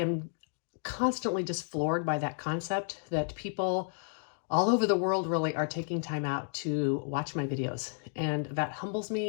constantly just floored by that concept that people all over the world really are taking time out to watch my videos. And that humbles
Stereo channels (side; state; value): right; silent; digital silence